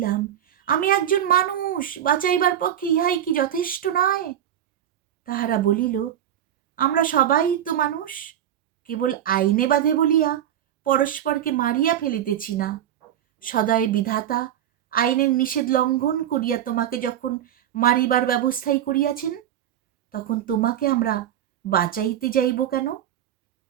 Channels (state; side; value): quieter; left; 10.8 dB